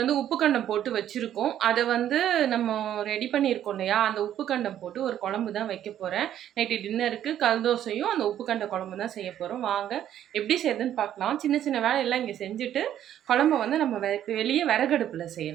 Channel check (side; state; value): left; quieter; 11.0 dB